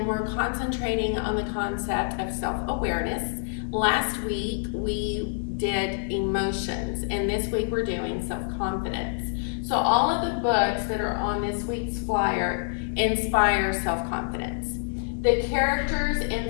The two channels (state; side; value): silent; right; digital silence